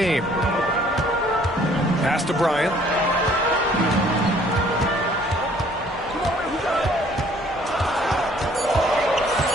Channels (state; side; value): normal; both; correlation 0.58